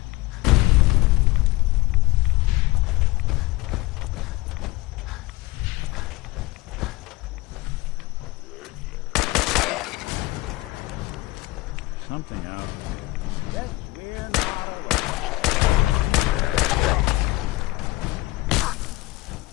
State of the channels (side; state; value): right; quieter; 19.8 dB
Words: Something out there.